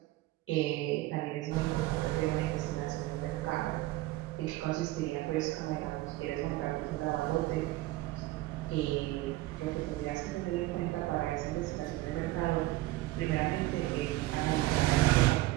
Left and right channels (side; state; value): left; quieter; 18.0 dB